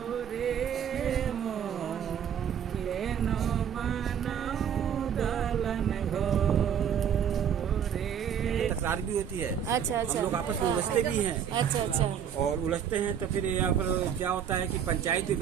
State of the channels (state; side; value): quieter; left; 8.5 dB